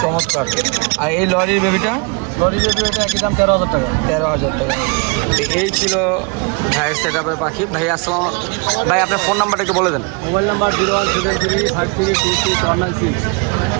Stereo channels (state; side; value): quieter; left; 33.0 dB